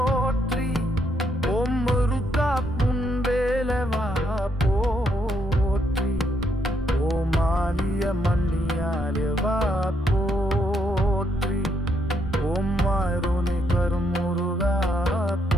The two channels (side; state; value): both; normal; correlation 0.75